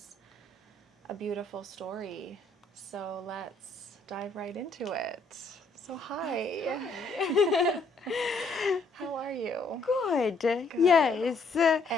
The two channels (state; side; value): quieter; right; 3.3 dB